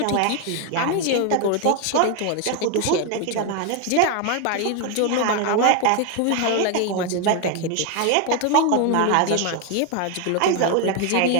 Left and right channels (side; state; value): both; different; correlation 0.01